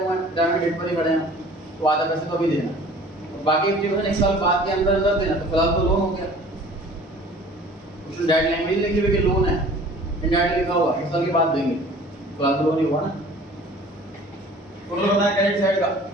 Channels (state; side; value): normal; both; correlation 0.48